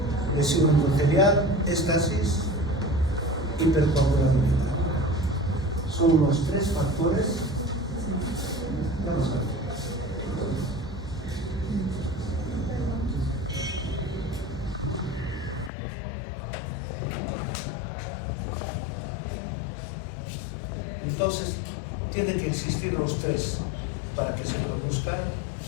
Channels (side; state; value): right; drops out; at 15.7 s